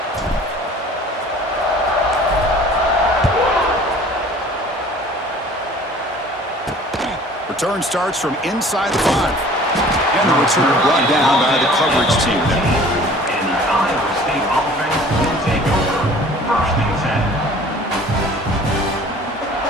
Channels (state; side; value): normal; both; correlation 0.49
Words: Return starts from inside the 5. And the return brought down by the coverage team. And the Iowa State offense will take over 1st and 10.